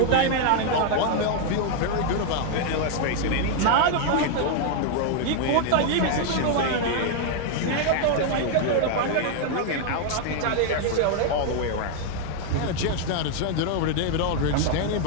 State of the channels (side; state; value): both; different; correlation 0.00